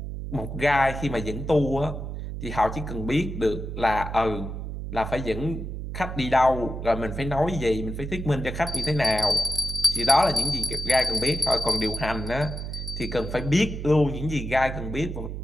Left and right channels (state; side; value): noise; right; hum, 6 dB below the sound